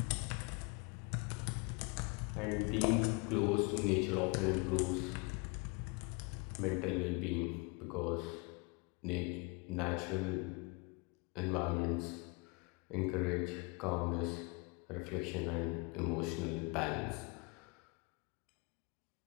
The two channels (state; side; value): quieter; right; 29.6 dB